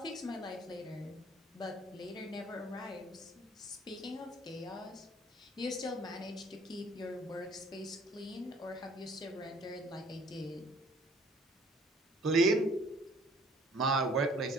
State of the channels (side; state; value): both; normal; correlation 0.56